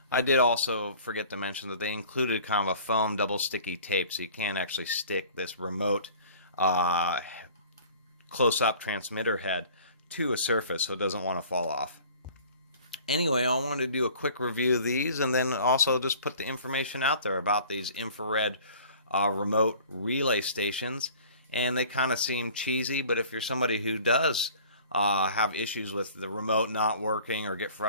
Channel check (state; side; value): inverted; both; correlation -0.48